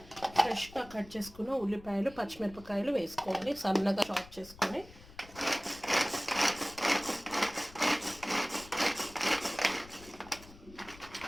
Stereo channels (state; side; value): noise; left; rumble, 20 dB below the sound